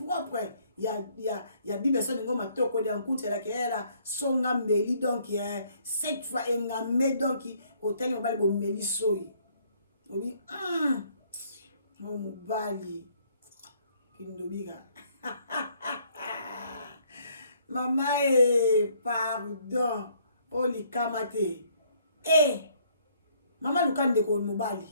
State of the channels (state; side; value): inverted; both; correlation -0.64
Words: ya bibe so ningo matoko de nkunti la kela songa mbeli donc cette fois engamé donc hôtel ngobali bo meli soyi obi mo mobali kindobika mama pardon oli kamate maman Luka ndeko mobali